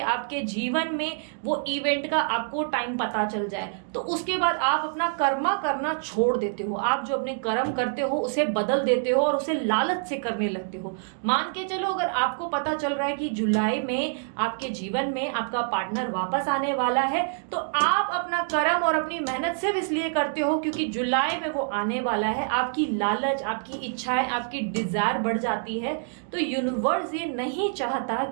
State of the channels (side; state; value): left; silent; digital silence